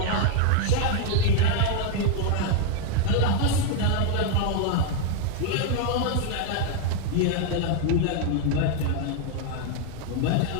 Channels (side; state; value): both; different; correlation 0.00